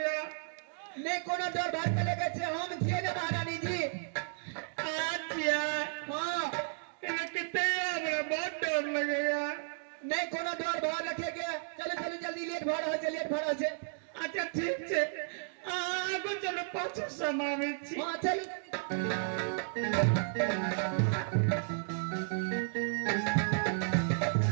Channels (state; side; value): silent; left; digital silence